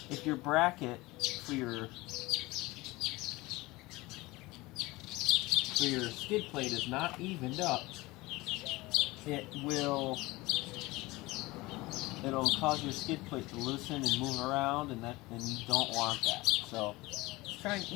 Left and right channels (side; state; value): right; quieter; 21.1 dB